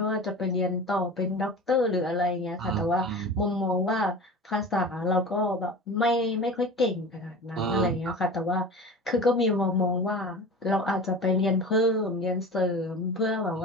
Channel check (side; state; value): both; normal; correlation 0.34